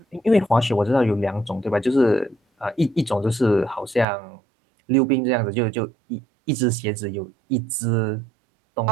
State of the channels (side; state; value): left; drops out; at 4.0 s